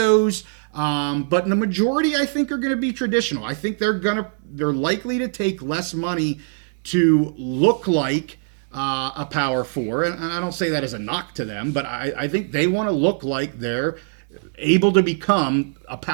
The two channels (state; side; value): silent; left; digital silence